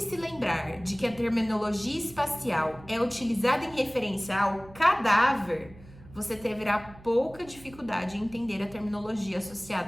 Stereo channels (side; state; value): right; noise; hum, 20 dB below the sound